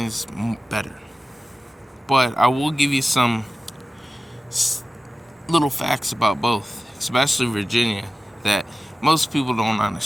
is better. But I will give you some little facts about both, especially Virginia, that most people don't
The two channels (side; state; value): both; normal; correlation 0.95